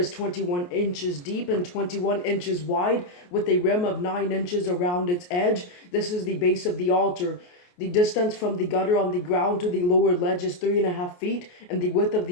21 inches deep and 21 inches wide, with a rim of 9 inches around its edge. This is the base of the altar. The distance from the gutter on the ground to the lower ledge is 3.5 feet, and the width of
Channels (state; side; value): late; right; 28 ms